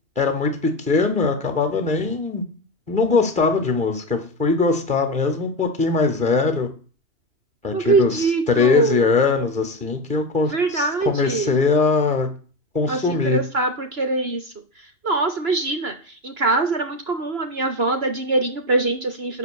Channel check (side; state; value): left; late; 2.4 ms